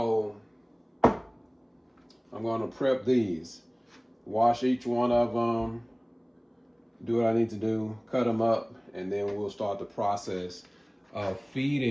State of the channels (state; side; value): identical; both; correlation 1.00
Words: I'm gonna prep these. Wash each one of them. Do what I need to do. Cut them up. And then we'll start the process of